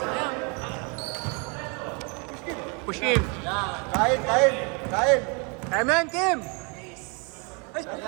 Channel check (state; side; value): quieter; left; 33.3 dB